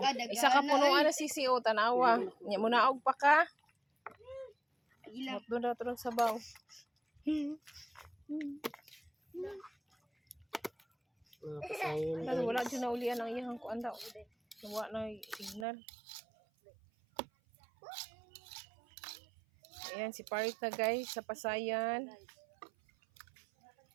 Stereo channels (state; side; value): drops out; left; at 15.7 s